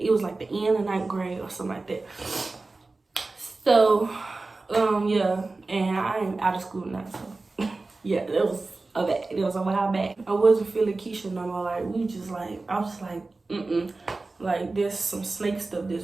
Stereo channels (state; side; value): quieter; left; 3.5 dB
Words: was like the end of 9th grade or something like that. So, yeah, and I am out of school now, so yeah, it was a while back. I wasn't feeling Keisha no more. Like, we just like, I was just like, like, there's some snake stuff